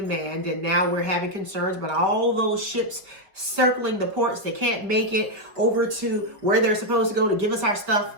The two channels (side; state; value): left; late; 4.9 ms